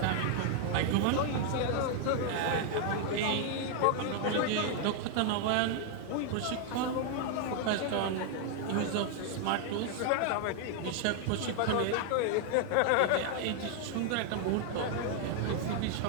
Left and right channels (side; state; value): both; different; correlation 0.00